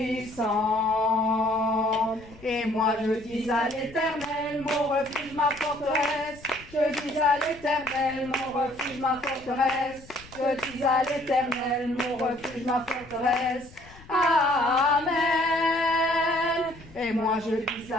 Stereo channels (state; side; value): noise; left; rumble, 21 dB below the sound